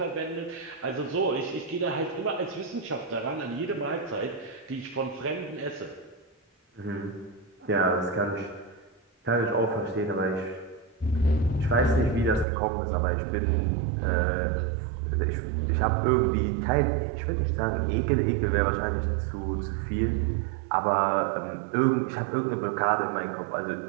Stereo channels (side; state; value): left; drops out; at 12.5 s